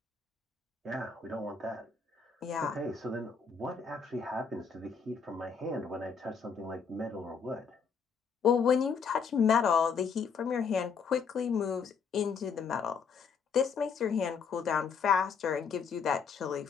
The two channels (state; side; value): quieter; right; 5.9 dB